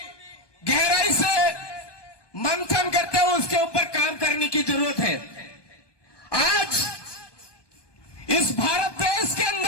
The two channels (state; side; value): late; right; 1.2 ms